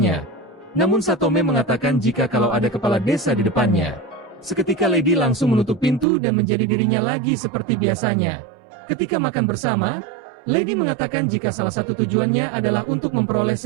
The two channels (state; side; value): drops out; left; at 6.1 s